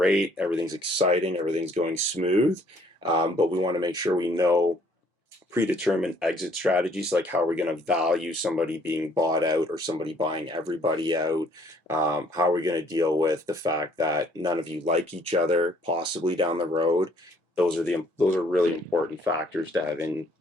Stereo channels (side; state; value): both; normal; correlation 0.62